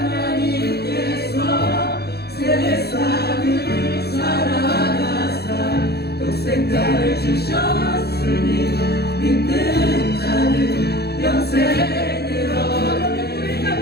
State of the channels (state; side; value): late; right; 0.47 ms